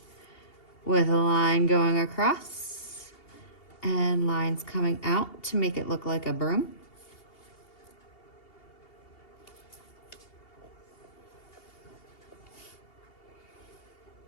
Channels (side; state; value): right; late; 2.8 ms